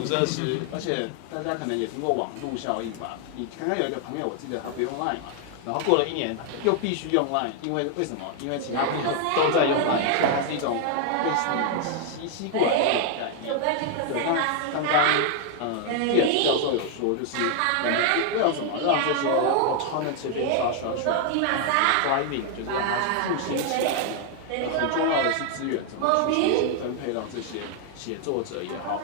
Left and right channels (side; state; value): both; different; correlation 0.00